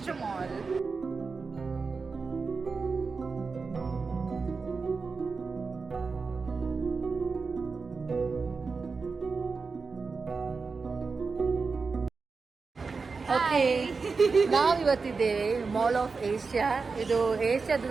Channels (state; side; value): quieter; left; 4.6 dB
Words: mall. Okay, ನಾವಿವತ್ತಿದ್ದೇವೆ mall of Asia. ಇದು ಏಷ್ಯಾದ